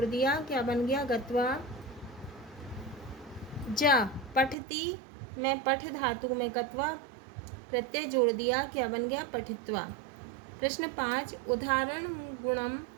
दिया, क्या बन गया, गत्वा। जा पठति में पठ धातु में कत्वा प्रत्यय जोड़ दिया, क्या बन गया, पठित्वा। प्रश्न 5 उदाहरण गुणम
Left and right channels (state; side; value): drops out; left; at 4.5 s